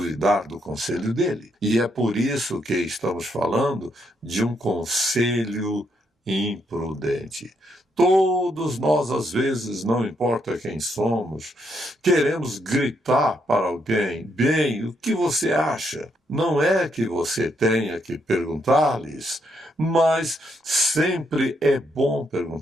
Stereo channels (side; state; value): both; normal; correlation 0.76